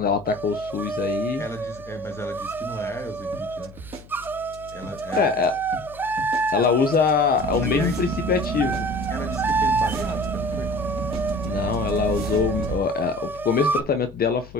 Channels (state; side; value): noise; left; hum, 20 dB below the sound